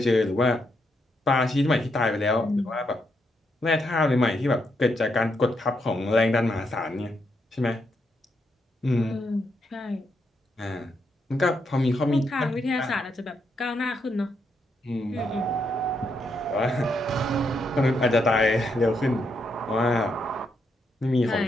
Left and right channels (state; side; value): normal; both; correlation 0.79